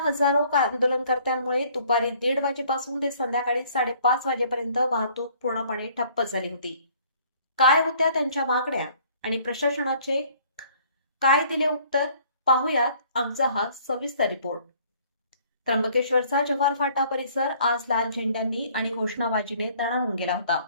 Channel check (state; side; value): inverted; both; correlation -0.58